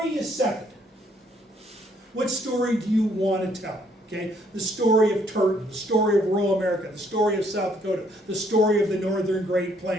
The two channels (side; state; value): both; normal; correlation 0.67